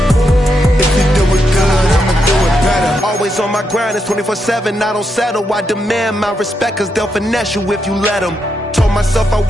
On my grind, it's 24/7, I don't settle. I demand my respect, cause they'll finesse you if you let them. Told myself I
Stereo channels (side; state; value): both; normal; correlation 0.82